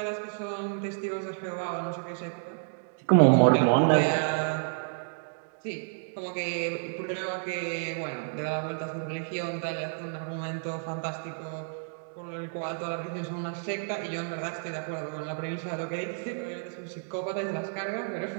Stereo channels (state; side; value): silent; left; digital silence